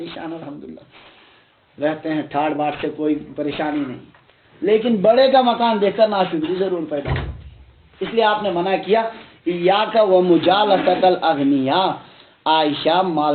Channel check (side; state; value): both; identical; correlation 1.00